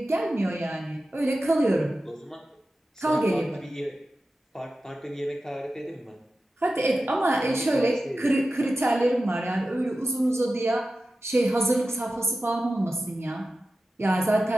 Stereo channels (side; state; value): both; normal; correlation 0.93